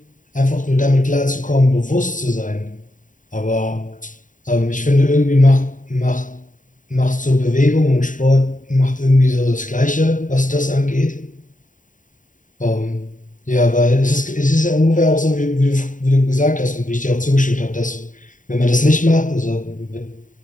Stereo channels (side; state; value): right; late; 0.38 ms